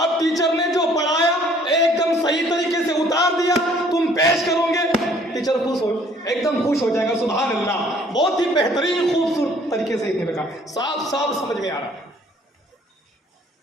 टीचर ने जो पढ़ाया एकदम सही तरीके से उतार दिया, तुम पेश करोगे, टीचर खुश हो, एकदम खुश हो जाएगा। सुभान अल्लाह, बहुत ही बेहतरीन खूबसूरत तरीके से इसने लिखा, साफ साफ समझ में आ रहा है।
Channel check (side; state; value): both; normal; correlation 0.59